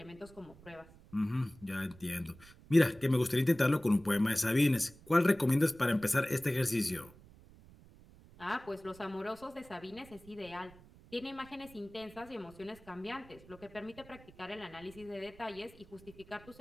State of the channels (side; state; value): right; noise; rumble, 22 dB below the sound